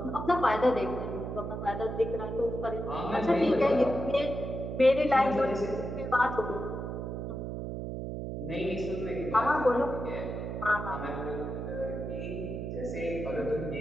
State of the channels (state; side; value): noise; right; hum, 5 dB below the sound